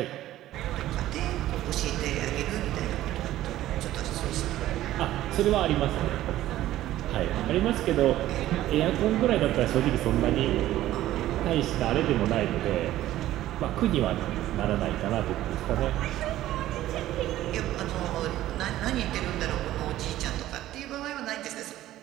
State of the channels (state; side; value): quieter; left; 14.2 dB